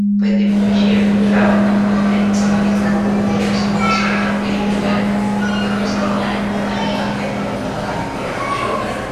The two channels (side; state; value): both; identical; correlation 1.00